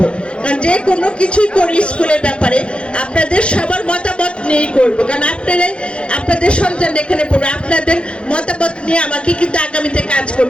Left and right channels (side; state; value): right; late; 0.057 ms